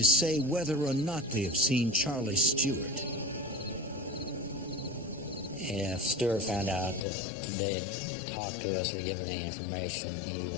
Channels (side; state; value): right; drops out; at 7.0 s